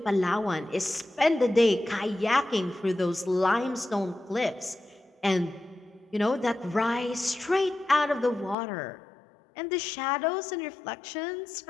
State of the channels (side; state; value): right; drops out; at 8.6 s